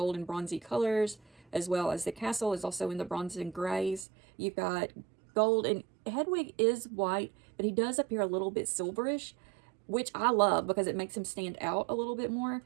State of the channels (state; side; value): drops out; left; at 4.0 s